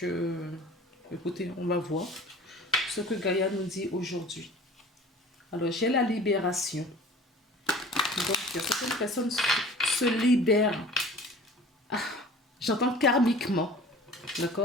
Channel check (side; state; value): both; normal; correlation 0.44